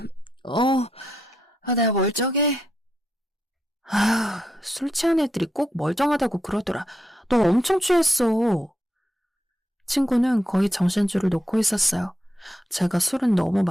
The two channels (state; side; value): normal; both; correlation 0.82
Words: 내가 멀쩡해. 술 취한 애들이 꼭 멀쩡하다고 그러더라. 너 엄청 취했어. 친구는 거의 정신줄을 놓고 있었어요. 제가 술은 너무